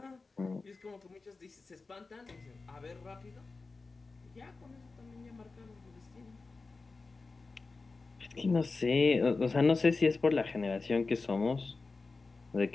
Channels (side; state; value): right; quieter; 3.9 dB